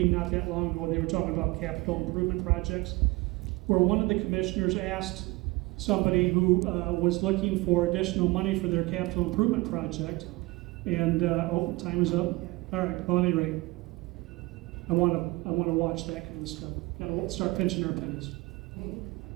not that long ago. They were talking about capital improvement projects, where one of the commissioners asked somebody who was looking for additional money for their capital improvement project, and time is up. All right. Well, at any rate, I want to watch that kind of stuff. I won't start pinching our pennies.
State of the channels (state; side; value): quieter; left; 22.6 dB